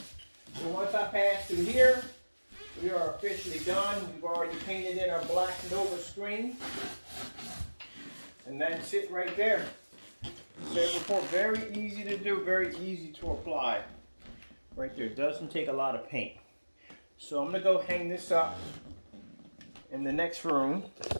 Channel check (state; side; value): inverted; both; correlation -1.00